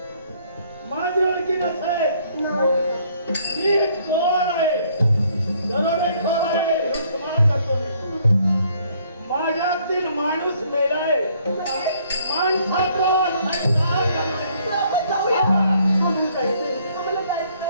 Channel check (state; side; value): inverted; both; correlation -0.64